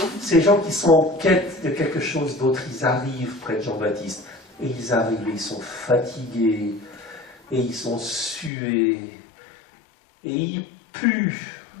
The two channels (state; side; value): drops out; right; at 8.5 s